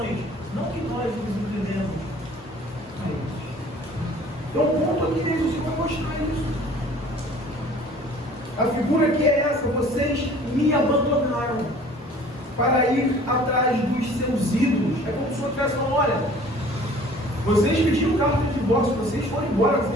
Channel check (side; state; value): both; normal; correlation 0.50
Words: não que nós nos entendemos a eles. Então o ponto aqui dele, o Senhor vai mostrar isso. A figura que é essa: vocês me abandonaram para ir atrás dos seus ídolos. É como se o Senhor estivesse falando: olha, vocês pediram carta de divórcio, vocês foram embora,